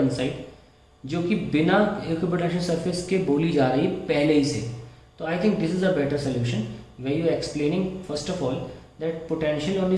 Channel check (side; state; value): both; identical; correlation 1.00